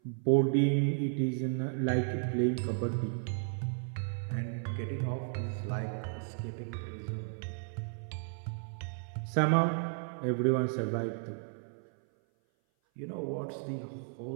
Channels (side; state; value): left; silent; 55 dB below the other